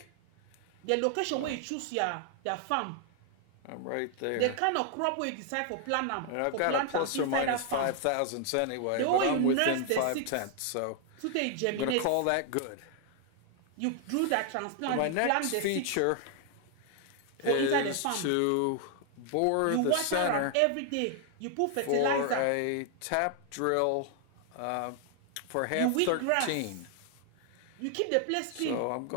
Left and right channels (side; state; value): both; different; correlation 0.00